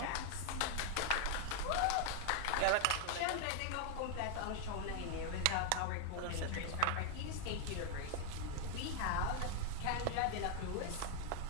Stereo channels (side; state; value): both; different; correlation 0.00